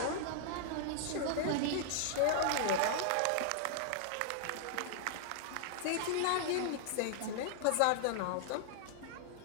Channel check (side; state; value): both; different; correlation -0.01